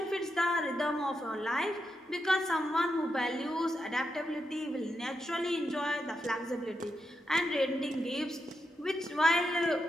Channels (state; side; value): normal; both; correlation 0.85